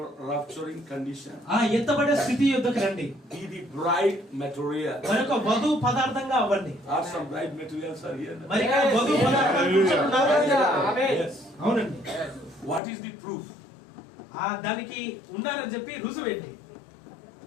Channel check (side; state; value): right; drops out; at 12.8 s